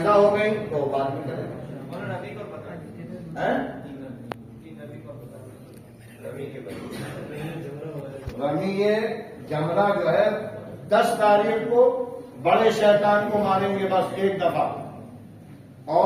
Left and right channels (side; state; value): both; identical; correlation 1.00